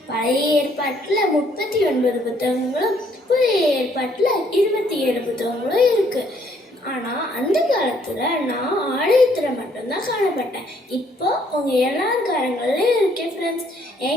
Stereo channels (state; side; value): normal; both; correlation 0.66